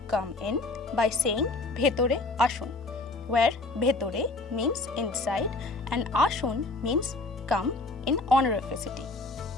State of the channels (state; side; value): quieter; right; 3.3 dB